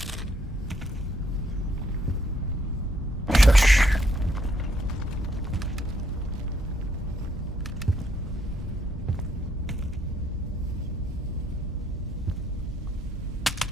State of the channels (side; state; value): both; normal; correlation 0.72